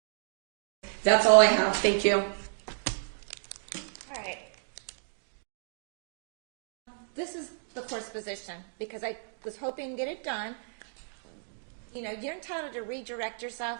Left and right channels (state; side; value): silent; left; digital silence